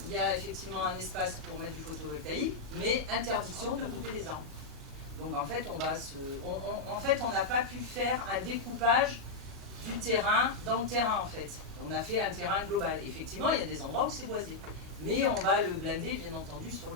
il y a effectivement un espace pour mettre du photovoltaïque, mais interdiction de couper les arbres. Donc en fait, on n'a pas pu faire un découpage du terrain dans le terrain en fait. On a fait un terrain global. Effectivement, il y a des endroits où c'est boisé. Mais on va le blinder, bien entendu, sur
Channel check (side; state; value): right; quieter; 3.6 dB